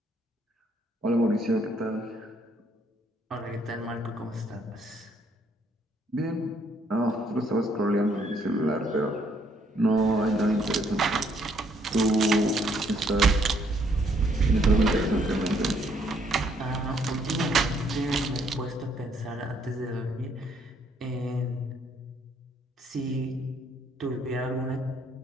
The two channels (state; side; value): normal; both; correlation 0.68